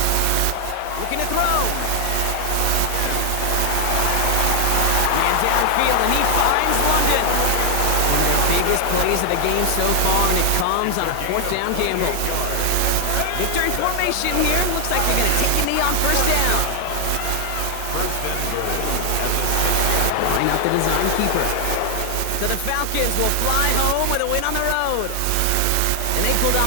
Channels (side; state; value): both; different; correlation 0.00